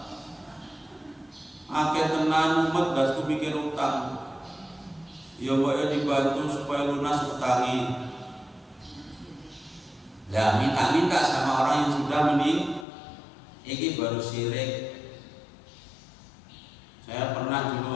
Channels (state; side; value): drops out; right; at 12.9 s